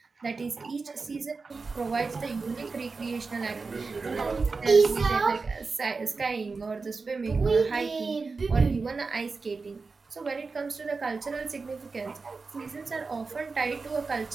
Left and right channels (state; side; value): quieter; left; 4.3 dB